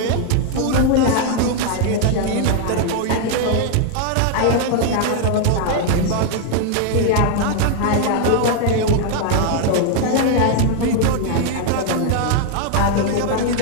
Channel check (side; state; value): both; different; correlation 0.00